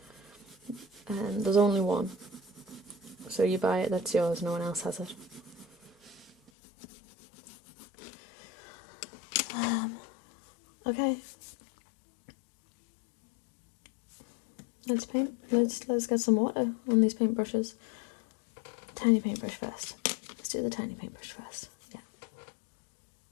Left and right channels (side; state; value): right; drops out; at 6.5 s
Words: there's only one. So you buy it, that's yours, no one else has it. Okay. Let's paint. Let's get some water on these paintbrushes. Tiny paintbrush first. Let's do the tiny paintbrush first. Yeah.